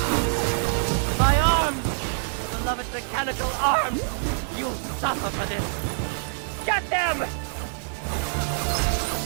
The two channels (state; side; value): silent; left; digital silence